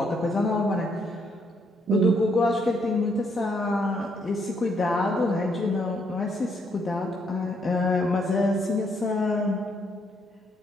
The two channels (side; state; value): both; normal; correlation 0.73